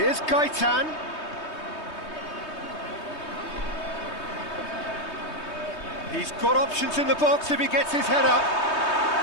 Gaitan. He's got options in the box if he gets his head up.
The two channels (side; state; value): right; late; 3.2 ms